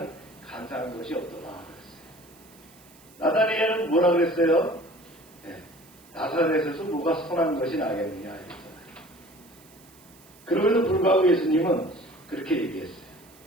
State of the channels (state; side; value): noise; right; hiss, 25 dB below the sound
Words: 간사한 것이 없더라 그랬어요. 나다니엘은 뭐라 그랬어요? 네, 나사렛에서 뭐가 선한 것이 나겠느냐 했잖아요. 그럼에도 불구하고 예수님은 그렇게 얘기했어요.